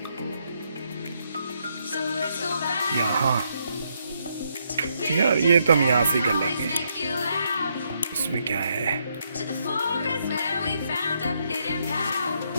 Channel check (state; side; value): inverted; both; correlation -0.76